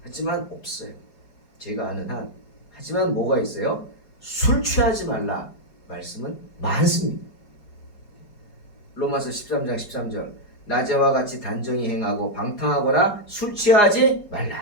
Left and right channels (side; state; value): right; late; 4.8 ms